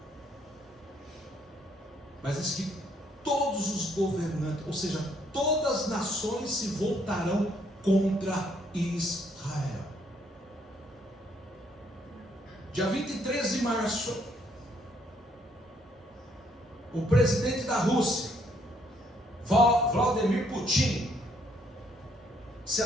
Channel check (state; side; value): normal; both; correlation 0.69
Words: Mas diz que todos os governantes, ou seja, todas as nações se voltarão contra Israel. Dia 23 de março, o presidente da Rússia, Vladimir Putin, se